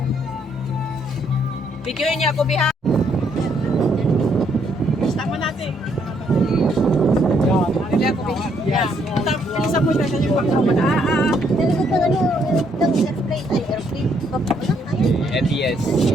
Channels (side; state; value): both; normal; correlation 0.71